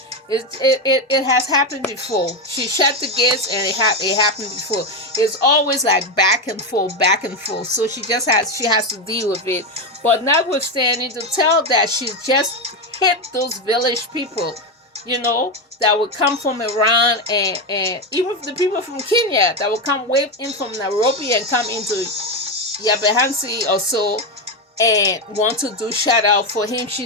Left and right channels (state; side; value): normal; both; correlation 0.11